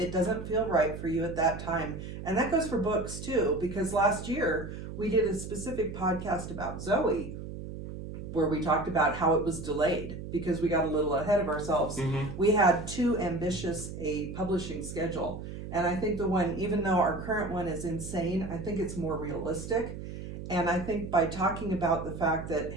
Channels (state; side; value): noise; right; hum, 9 dB below the sound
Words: doesn't feel right for you at that time. And that goes for books too, because last year we did a specific podcast about Zoe where we talked about how it was delayed because we got a little ahead of ourselves. We had too ambitious a publishing schedule. And I think the one, even though our current one is insane, I think it's more realistic. And I think by talking about the fact that,